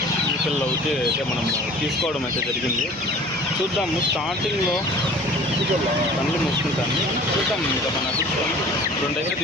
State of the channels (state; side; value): normal; both; correlation 0.46